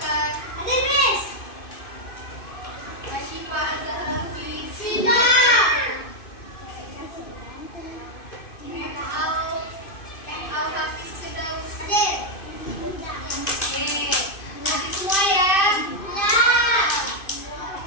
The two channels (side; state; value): right; late; 2.5 ms